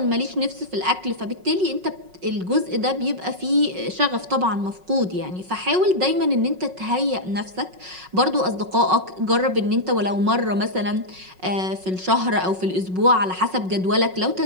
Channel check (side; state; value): left; late; 5.4 ms